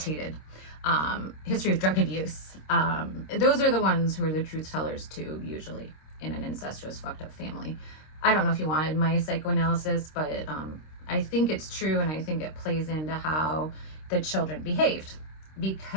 history of drug abuse. Those are the ones who are the truth tellers too, usually, in an incestuous, fucked up family. I don't know if you wanted my psychoanalysis, but I think it's true, and I think it plays into how the children behaved,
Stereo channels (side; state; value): right; late; 26 ms